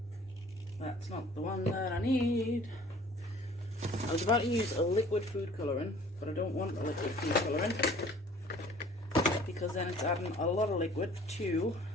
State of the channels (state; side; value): normal; both; correlation 0.51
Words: That's not the one that I need. I was about to use a liquid food colouring, but I don't want a liquid food colouring because then it's adding a lot of liquid to